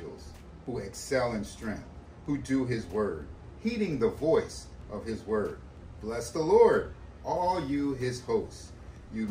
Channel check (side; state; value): both; identical; correlation 1.00